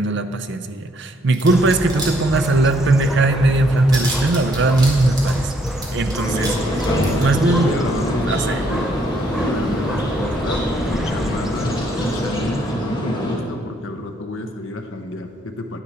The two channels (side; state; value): both; normal; correlation 0.69